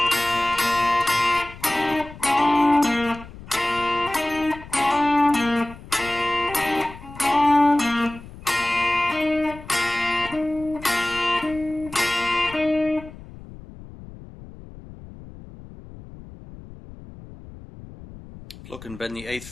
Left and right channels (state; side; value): noise; left; rumble, 17 dB below the sound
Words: Pluck and bend the 8th